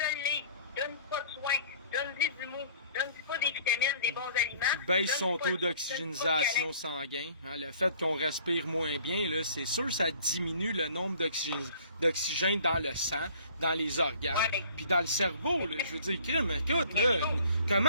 donne pas de soins, donne-lui du mou, donne-lui pas des vitamines, des bons aliments. Baisse son taux d'oxygénisation sanguin. Hein, le fait qu'on respire moins bien, là, c'est sûr ça diminue le nombre d'oxygène dans le sang, dans les organes, puis dans le cerveau. Là, je veux dire, crime, écoute, là,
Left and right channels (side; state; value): both; inverted; correlation -0.54